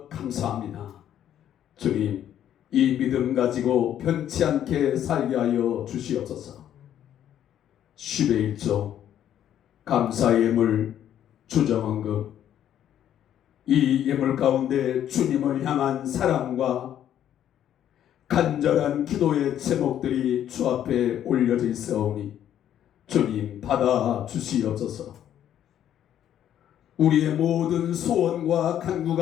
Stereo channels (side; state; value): right; quieter; 10.6 dB